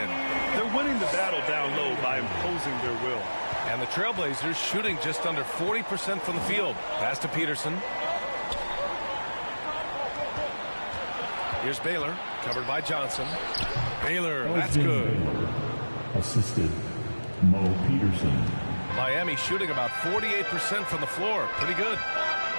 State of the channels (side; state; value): both; inverted; correlation -1.00